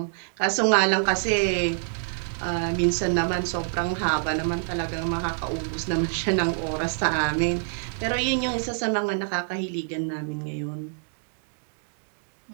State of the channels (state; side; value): silent; left; digital silence